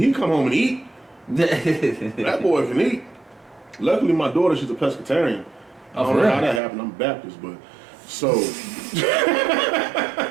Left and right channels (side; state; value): left; drops out; at 6.6 s